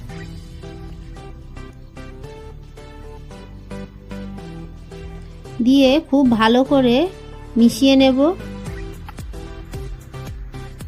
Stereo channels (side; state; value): both; identical; correlation 1.00